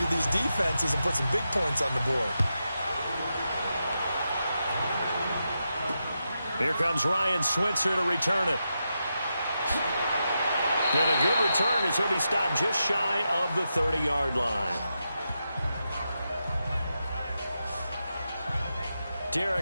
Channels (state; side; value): inverted; both; correlation -0.87